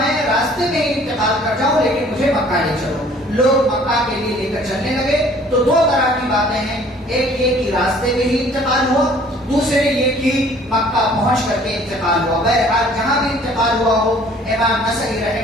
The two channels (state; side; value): normal; both; correlation 0.54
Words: راستے میں ہی انتقال کر جاؤں، لیکن مجھے مکہ لے چلو. لوگ مکہ کے لیے لے کر چلنے لگے. تو دو طرح کی باتیں ہیں، ایک یہ کہ راستے میں ہی انتقال ہوا، دوسرے یہ کہ مکہ پہنچ کر کے انتقال ہوا. بہرحال جہاں بھی انتقال ہوا ہو، امام نسائی